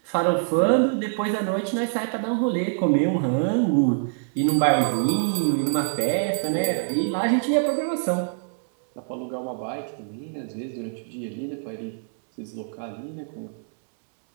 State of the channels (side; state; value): left; silent; digital silence